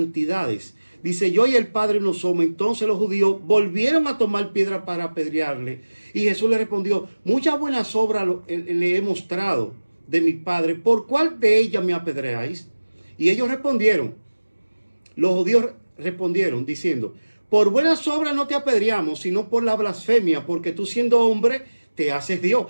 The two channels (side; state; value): both; inverted; correlation -1.00